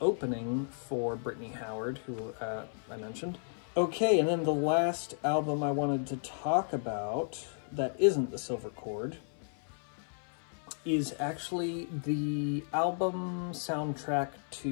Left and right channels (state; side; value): silent; right; 55 dB below the other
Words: opening for Brittany Howard, who I mentioned. Okay, and then the last album I wanted to talk about that isn't The Silver Cord is actually the album soundtrack